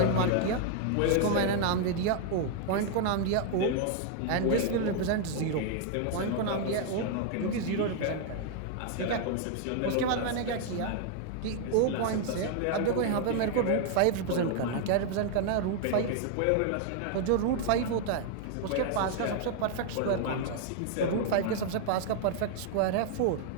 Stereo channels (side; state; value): both; different; correlation 0.00